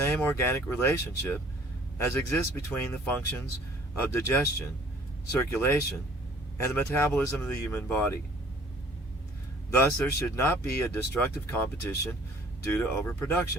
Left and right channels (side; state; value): both; normal; correlation 0.54